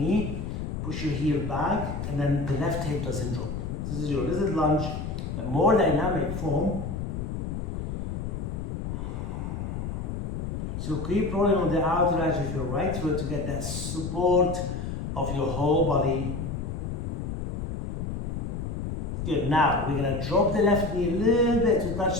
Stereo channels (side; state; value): left; noise; rumble, 4 dB below the sound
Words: push your heel back, and then the left hip doesn't drop. This is your lizard lunge, a more dynamic form. So keep rolling on the outer edge of your right foot to get that support of your whole body. Good. Now we're going to drop the left knee a little bit to